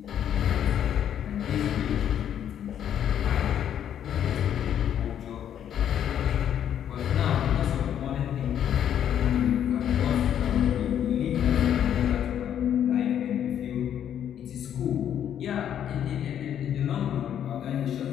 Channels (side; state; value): right; quieter; 9.7 dB